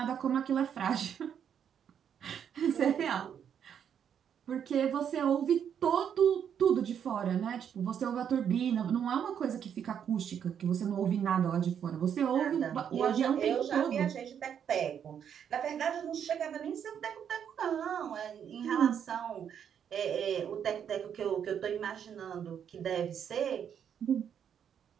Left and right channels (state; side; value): quieter; left; 8.4 dB